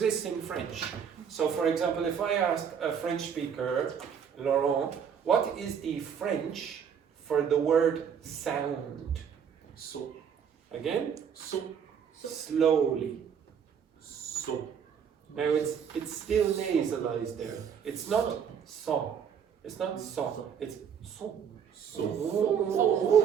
in French. So, for example, if I ask a French speaker, Laurent, what is the French for the word sound? So. Again? So. Slowly. So. Now, it's still nasalized there. It's not son. It's not son. It's son. So.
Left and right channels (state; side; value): quieter; left; 7.6 dB